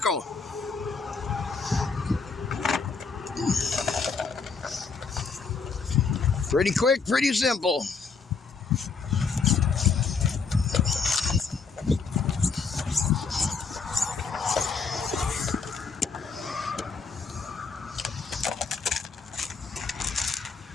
Pretty quick, pretty simple.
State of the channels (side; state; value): right; quieter; 5.0 dB